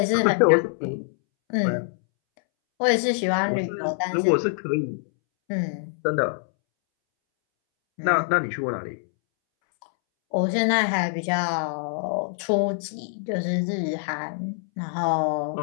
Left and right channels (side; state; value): right; silent; 62 dB below the other